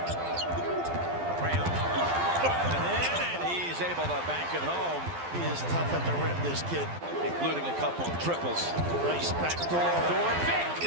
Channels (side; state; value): left; late; 12 ms